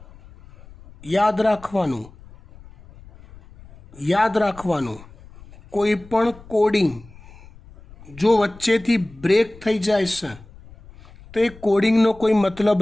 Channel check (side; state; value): left; noise; rumble, 22 dB below the sound